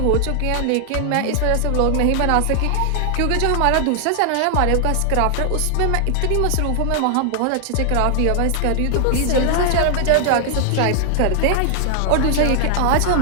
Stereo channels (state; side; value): different; both; correlation 0.00